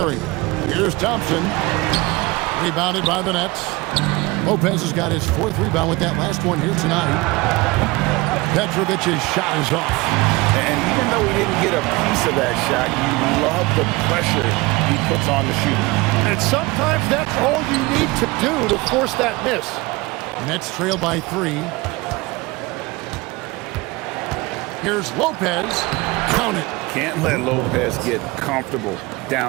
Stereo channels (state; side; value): quieter; left; 22.6 dB